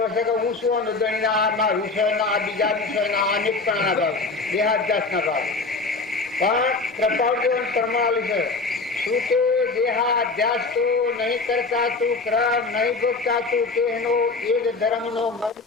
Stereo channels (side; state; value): right; quieter; 3.9 dB